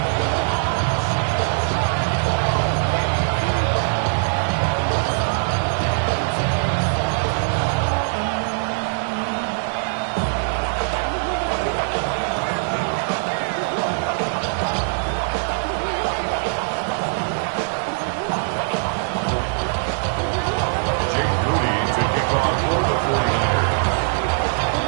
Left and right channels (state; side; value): silent; left; 64 dB below the other